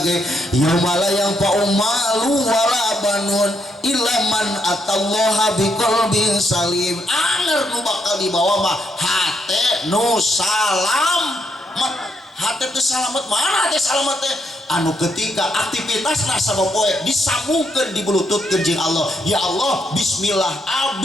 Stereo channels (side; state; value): both; normal; correlation 0.77